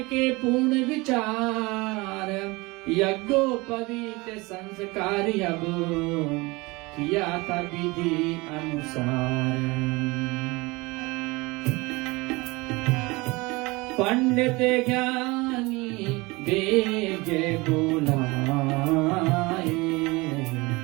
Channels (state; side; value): quieter; left; 23.9 dB